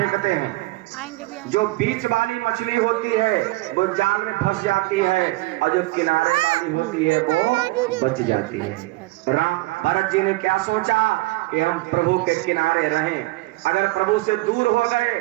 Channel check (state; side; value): quieter; left; 21.0 dB